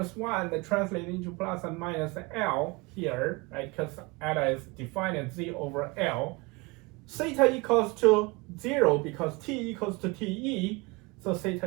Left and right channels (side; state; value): left; quieter; 25.4 dB